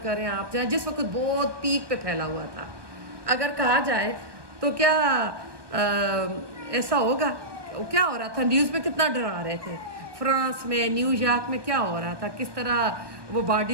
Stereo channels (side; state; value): left; late; 1.2 ms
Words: کریں آپ جائیں، جس وقت بہت پیک پہ پھیلا ہوا تھا، اگر کہا جائے تو کیا ایسا ہوگا؟ کیا ہو رہا تھا نیوز میں کتنا ڈرا رہے تھے. فرانس میں، نیو یارک میں کیا ہو رہا تھا، کس طرح وہ